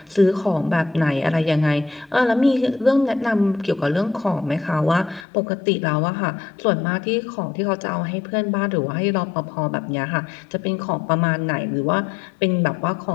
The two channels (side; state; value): right; drops out; at 5.2 s